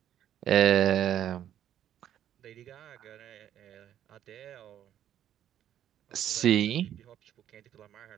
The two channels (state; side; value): quieter; left; 10.8 dB